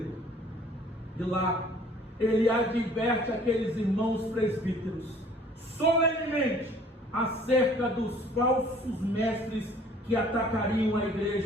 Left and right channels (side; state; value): both; normal; correlation 0.54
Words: De lá, ele adverte aqueles irmãos presbíteros solenemente acerca dos falsos mestres que atacariam a